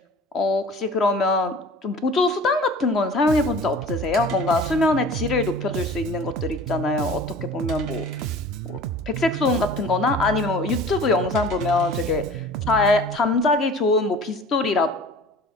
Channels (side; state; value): both; normal; correlation 0.43